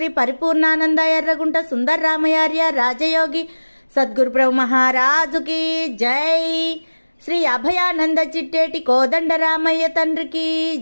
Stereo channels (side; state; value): both; inverted; correlation -1.00